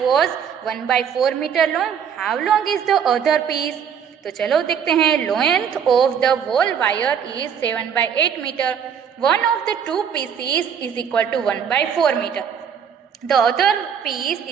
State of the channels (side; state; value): left; quieter; 7.7 dB